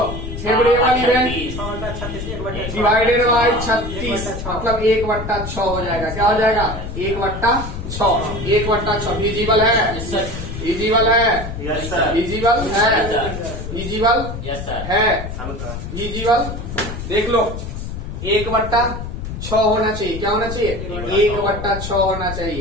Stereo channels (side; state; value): left; noise; rumble, 7 dB below the sound